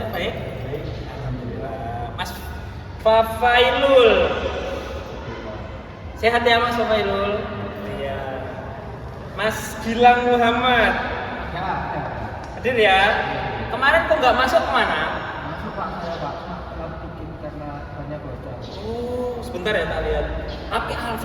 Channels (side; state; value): both; identical; correlation 1.00